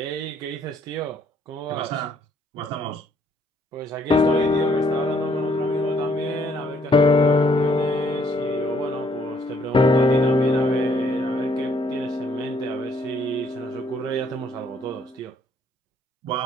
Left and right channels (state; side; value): normal; both; correlation 0.66